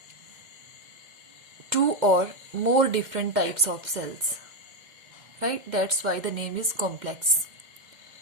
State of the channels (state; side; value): late; left; 2.1 ms